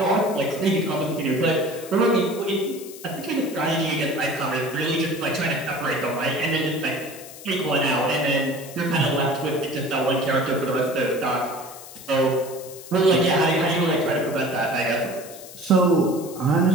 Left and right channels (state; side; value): noise; left; hiss, 16 dB below the sound